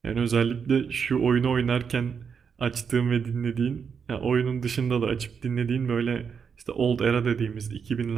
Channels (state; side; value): quieter; left; 6.5 dB